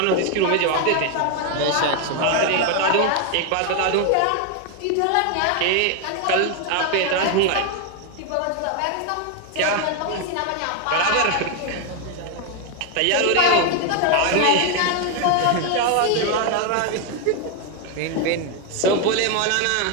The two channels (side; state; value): both; different; correlation 0.01